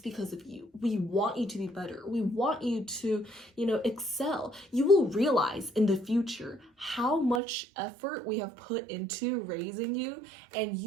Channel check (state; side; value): drops out; left; at 7.4 s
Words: because of you. We want you to be better. We want you to, excel. You will realize in the future how much effort we have put into raising you, and